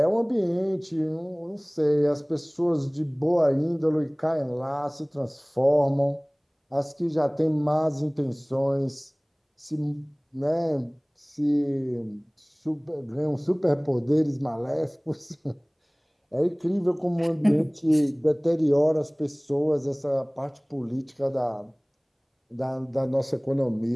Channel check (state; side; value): identical; both; correlation 1.00